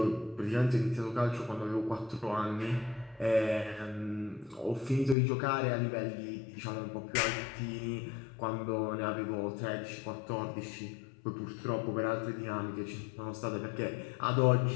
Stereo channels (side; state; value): right; drops out; at 5.2 s